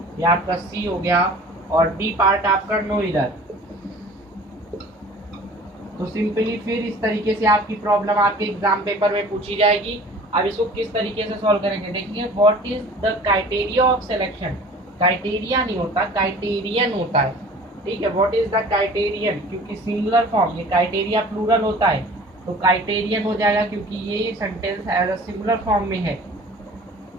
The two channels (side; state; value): both; normal; correlation 0.45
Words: ये आपका सी हो गया और डी पार्ट आपका नो एरर। तो सिंपली फिर इस तरीके से आपकी प्रॉब्लम आपके एग्जाम पेपर में पूछी जाएगी। अब इसको किस तरीके से सॉल्व करेंगे देखिए। What is the criteria of selection, criteria नहीं होता, क्राइटेरियन होता है, ठीक है। व्हाट इज द क्राइटेरियन, क्योंकि सिंगुलर फॉर्म, ये क्राइटेरिया प्लूरल होता है तो क्राइटेरियन हो जाएगा क्योंकि ये sentence as a singular form में है।